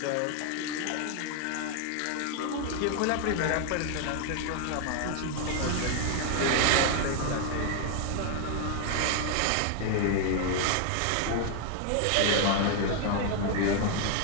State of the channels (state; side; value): different; both; correlation 0.00